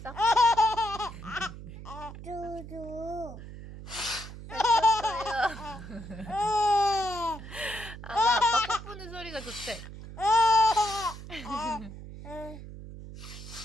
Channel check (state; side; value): noise; right; hum, 13 dB below the sound